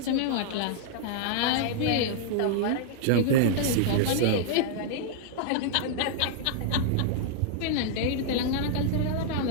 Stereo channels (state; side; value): different; both; correlation -0.01